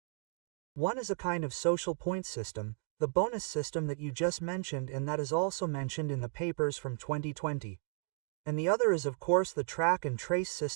One is a kind of social point system, the bonus system that you just mentioned, and that is also mentioned in the papers from 2020. And the other is of course the track and trace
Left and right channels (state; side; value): silent; left; 55 dB below the other